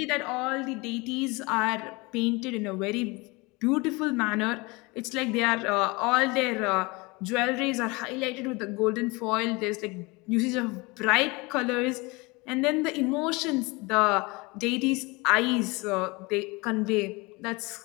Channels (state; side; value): quieter; right; 25.4 dB